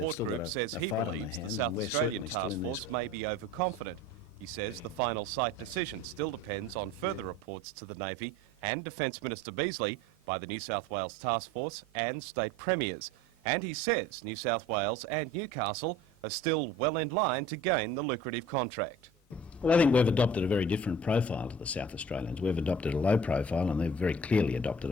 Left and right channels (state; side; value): normal; both; correlation 0.44